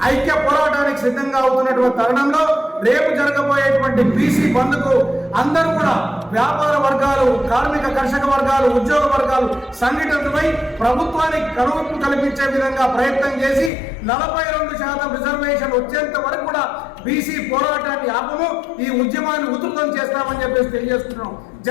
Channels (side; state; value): right; drops out; at 13.7 s